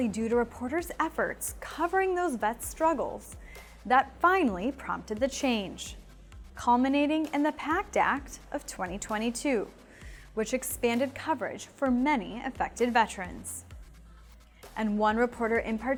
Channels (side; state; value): both; identical; correlation 1.00